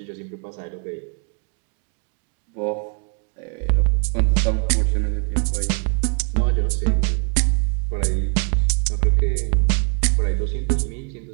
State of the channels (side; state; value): left; quieter; 38.6 dB